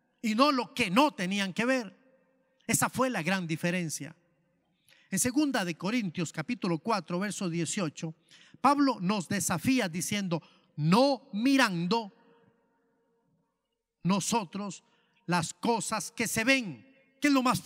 y no lo que no tenían que ver. Esa fue la gran diferencia. En 2 de Corintios capítulo 4 verso 18, Pablo nos desafía diciendo: no mirando nosotros las cosas que se ven, que es lo más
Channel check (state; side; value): identical; both; correlation 1.00